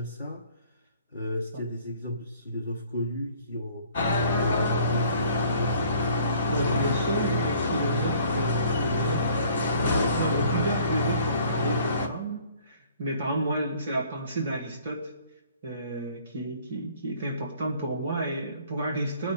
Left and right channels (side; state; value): both; inverted; correlation -0.56